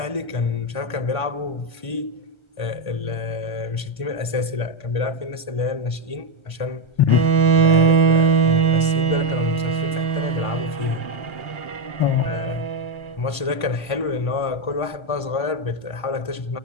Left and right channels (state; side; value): late; right; 1.5 ms